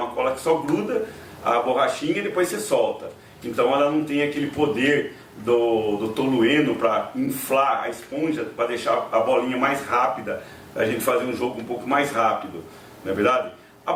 cola que só gruda a borrachinha e depois você solta. Então ela não tem aquele poder do tolueno para inflar a esponja, para deixar a bolinha mais rápida, a gente fazer um jogo um pouco mais rápido, não é verdade? A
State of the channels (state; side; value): identical; both; correlation 1.00